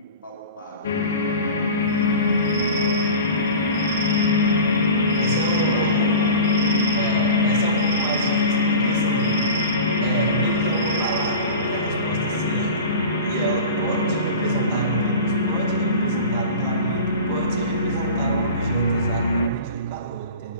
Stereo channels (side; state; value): both; inverted; correlation -0.35